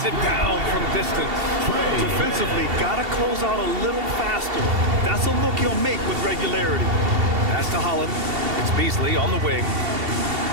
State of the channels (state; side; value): late; left; 2.7 ms